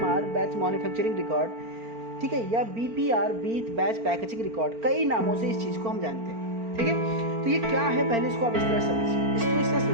बैच मैन्युफैक्चरिंग रिकॉर्ड, ठीक है, या BPR बैच पैकेजिंग रिकॉर्ड। कई नामों से इस चीज़ को हम जानते हैं, ठीक है। तो ये क्या है, पहले इसको आप इस तरह समझिए। इसको इस तरह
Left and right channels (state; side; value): late; left; 4.4 ms